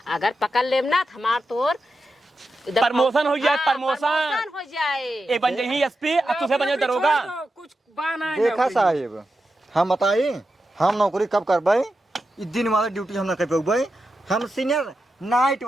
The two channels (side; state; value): both; normal; correlation 0.89